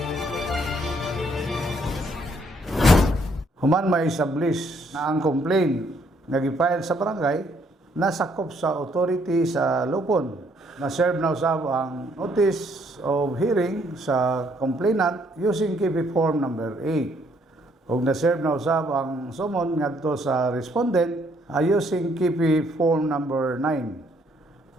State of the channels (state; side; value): normal; both; correlation 0.68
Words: Human may establish na ang complaint nga gifile sa barangay nasakop sa authority sa Lupon. Na-serve na usab ang notice of hearing sa complainant using KP Form number 8. Ug na-serve na usab ang summon ngadto sa respondent using KP Form number 9.